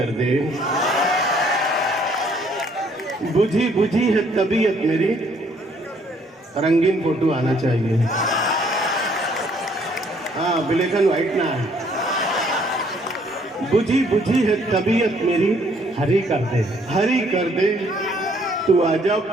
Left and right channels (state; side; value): normal; both; correlation 0.64